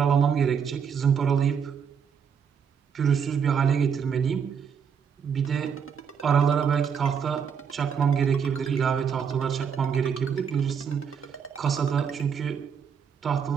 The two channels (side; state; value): left; quieter; 7.1 dB